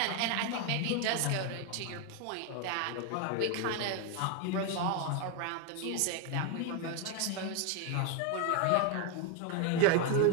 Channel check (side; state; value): both; different; correlation 0.01